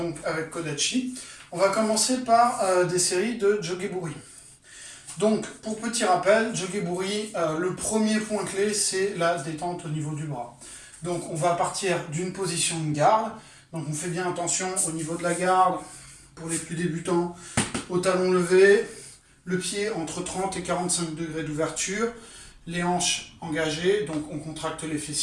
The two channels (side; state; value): both; identical; correlation 1.00